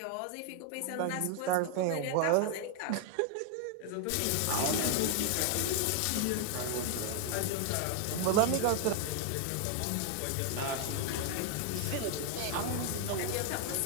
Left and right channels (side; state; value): both; different; correlation 0.00